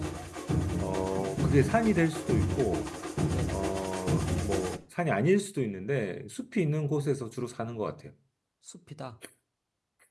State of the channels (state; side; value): identical; both; correlation 1.00